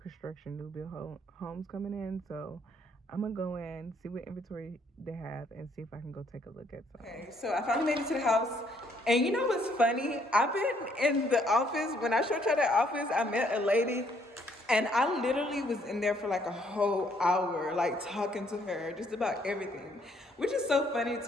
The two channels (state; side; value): normal; both; correlation 0.67